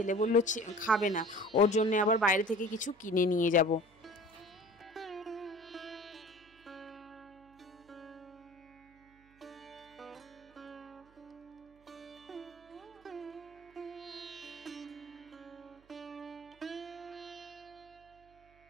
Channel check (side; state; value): right; noise; hum, 29 dB below the sound